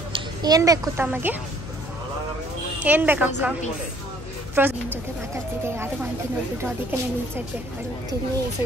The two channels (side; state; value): left; noise; hum, 11 dB below the sound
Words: ಏನು ಬೇಕು ತಮಗೆ? ಏನು ಬೇಕಕ್ಕ? ನಿನ್ನ ಜೊತೆ ಮಾತಾಡ್ತಿದ್ದೆ, ಯಾರು ಅಂತ ನೋಡ್ಬಿಟ್ಟು ಅದಕ್ಕೆ ನಾನು ಇನ್ಸೈಡ್ ಬೇಕು ಹೋಗ್ತೀನಿ. ಸೊ